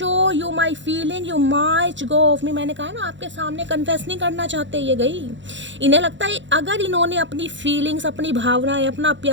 you my feeling you might go of me. मैंने कहा ना आपके सामने कन्फेस नहीं करना चाहते ये गई, इन्हें लगता है अगर इन्होंने अपनी फीलिंग्स, अपनी भावनाएं, अपना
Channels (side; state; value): left; late; 0.54 ms